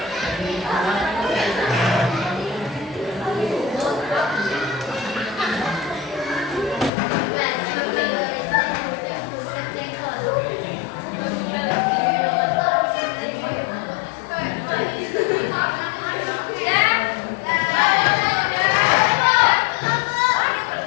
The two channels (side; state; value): right; drops out; at 6.9 s